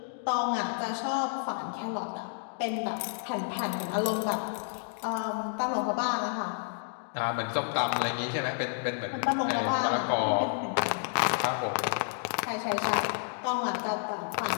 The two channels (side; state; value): right; silent; digital silence